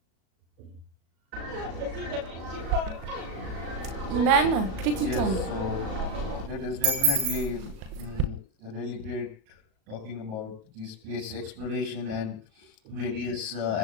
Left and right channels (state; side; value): late; left; 37 ms